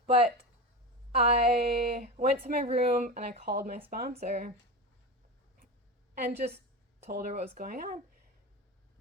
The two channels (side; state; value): both; normal; correlation 0.23